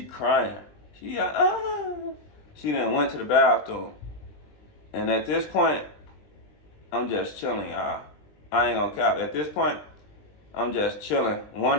crying. She like, ah. She then went to the bathroom. And at this point, I'm just chilling, y'all. I ain't gonna cap. At this point, I'm just chilling,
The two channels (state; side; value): late; right; 20 ms